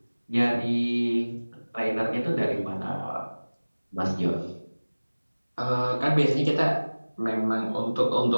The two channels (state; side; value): inverted; both; correlation -1.00